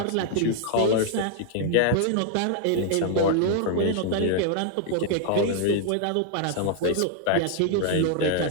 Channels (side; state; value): both; different; correlation 0.00